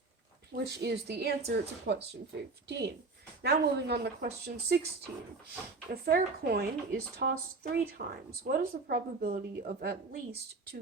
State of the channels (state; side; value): quieter; left; 3.8 dB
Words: Which is the answer to question 15. Now moving on to question 16. A fair coin is tossed 3 times. What is the probability of at least 2